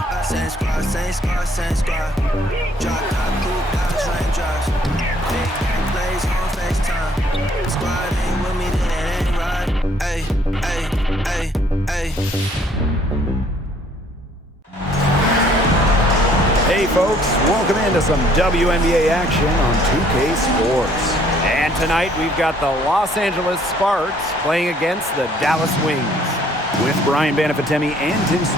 Same squad. Drop top, cool guys, raindrops. Big gang plays on FaceTime. Squad ain't with me, then it ain't right. Ay. Hey folks, welcome into some WNBA action on 2K Sports. And tonight we've got the Los Angeles Sparks playing against the Dallas Wings. With Brian Banafatemi and Tim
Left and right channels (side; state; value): both; normal; correlation 0.62